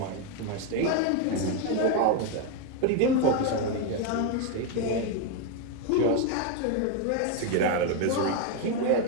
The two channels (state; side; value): different; both; correlation 0.01